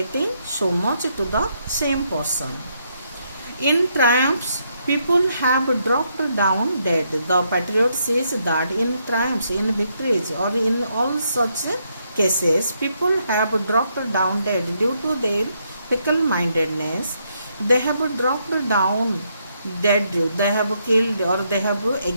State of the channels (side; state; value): both; inverted; correlation -0.76